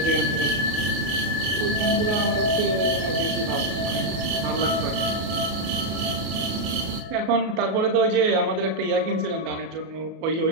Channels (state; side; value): late; left; 33 ms